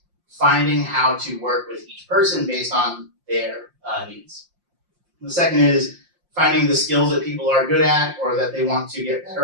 finding how to work with each person based on their needs. The second is finding the skills that people are good at or that they want to get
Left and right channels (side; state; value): left; late; 5.7 ms